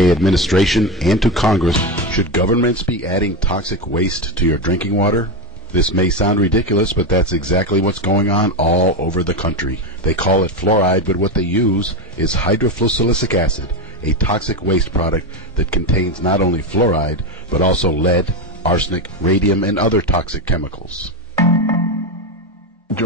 administration and to Congress, should governments be adding toxic waste to your drinking water? This may sound ridiculous, but that's exactly what's going on all over the country. They call it fluoride, but what they use is hydrofluosilicic acid, a toxic waste product that contains not only fluoride, but also lead, arsenic, radium, and other toxic chemicals.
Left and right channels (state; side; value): normal; both; correlation 0.13